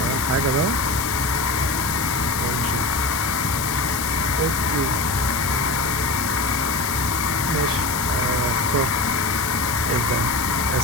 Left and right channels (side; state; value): left; noise; hiss, 4 dB below the sound